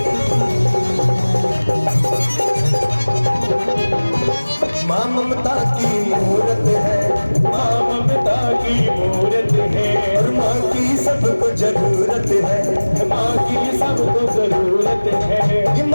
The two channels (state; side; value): inverted; both; correlation -1.00